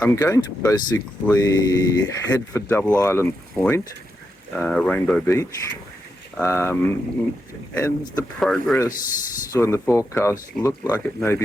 going to basically head for Double Island Point, Rainbow Beach, and the progress on the forecast looked like it may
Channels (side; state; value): both; normal; correlation 0.85